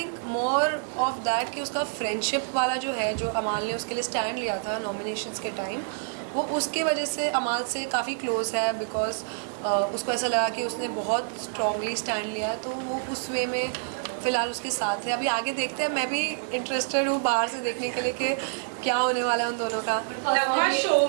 more of that कि उसका फ्रेंडशिप वाला जो है, जो अमाल ने उसके लिए स्टैंड लिया था नॉमिनेशंस के टाइम, वो उसके वजह से अमाल से काफ़ी क्लोज है, बिकॉज उसको ऐसा लगा कि उसने बहुत स्ट्रांगली स्टैंड लिया है, तो वो उस वे में फ़िलहाल उसके साथ है। अभी आगे देखते हैं। मैं भी इंटरेस्टेड हूँ बाहर से देखने के लिए कि क्या होने वाला है उन दोनों का। शो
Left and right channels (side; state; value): left; silent; 60 dB below the other